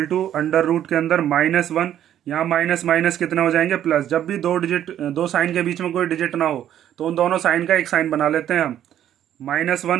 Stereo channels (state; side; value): quieter; left; 10.9 dB